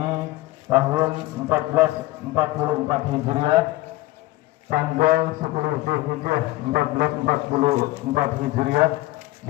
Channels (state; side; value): quieter; right; 18.2 dB